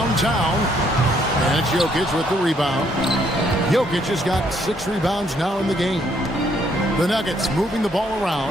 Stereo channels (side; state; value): both; normal; correlation 0.69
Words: And it's Jokic with the rebound. Jokic has got 6 rebounds now in the game. The Nuggets moving the ball